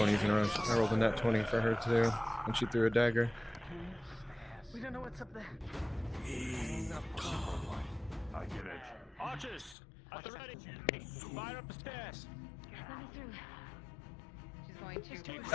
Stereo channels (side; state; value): right; drops out; at 9.8 s